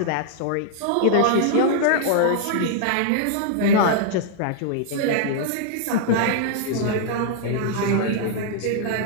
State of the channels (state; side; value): different; both; correlation -0.01